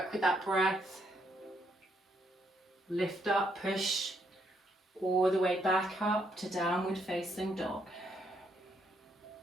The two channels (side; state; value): both; normal; correlation 0.74